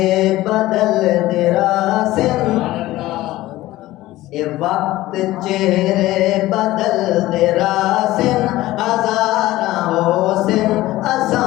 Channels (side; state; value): right; quieter; 16.8 dB